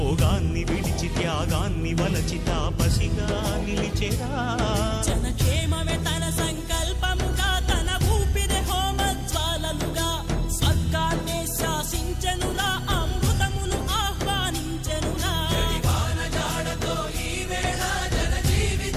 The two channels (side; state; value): both; identical; correlation 1.00